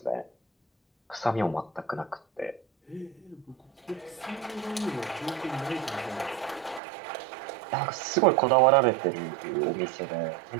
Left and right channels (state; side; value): drops out; left; at 6.8 s